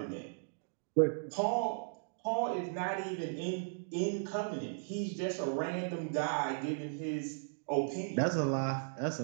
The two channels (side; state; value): left; silent; digital silence